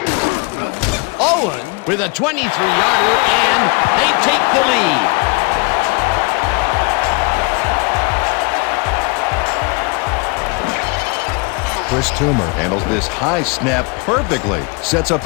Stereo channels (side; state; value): right; quieter; 31.0 dB